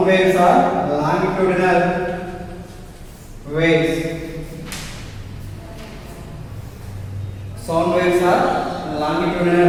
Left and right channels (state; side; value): identical; both; correlation 1.00